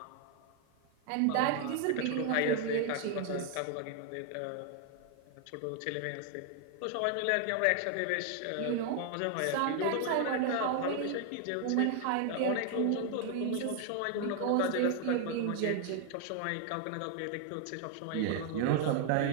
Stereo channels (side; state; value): both; different; correlation 0.00